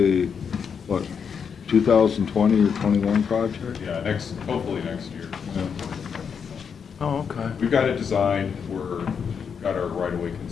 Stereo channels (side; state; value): right; quieter; 6.7 dB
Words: what, 2020 or 21 project? Yeah, hopefully next year. Oh, okay. We've got it designed, got our right-of-way